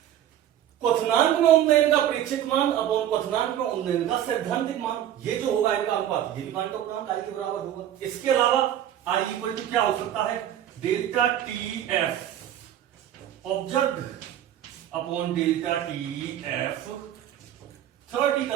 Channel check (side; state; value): left; quieter; 11.3 dB